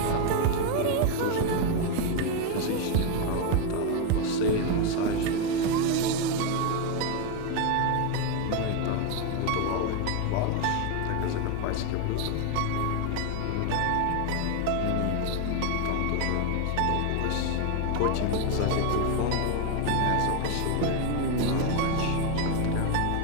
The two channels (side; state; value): both; different; correlation 0.01